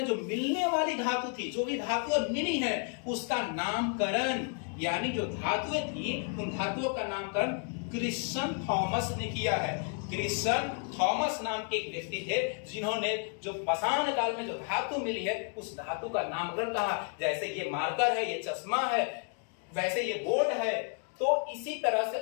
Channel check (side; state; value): right; quieter; 38.9 dB